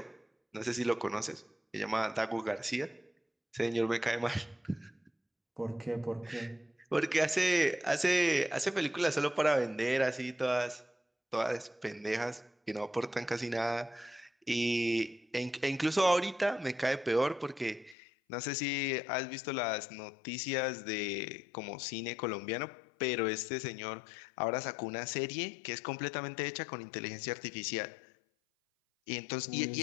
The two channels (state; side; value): drops out; right; at 17.9 s